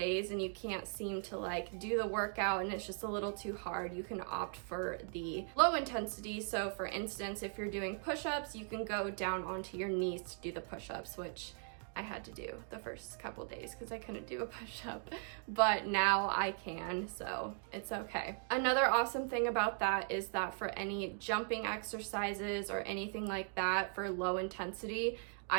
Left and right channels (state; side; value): silent; left; 52 dB below the other